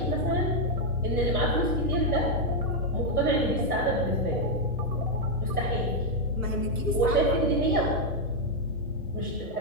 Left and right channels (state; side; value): normal; both; correlation 0.00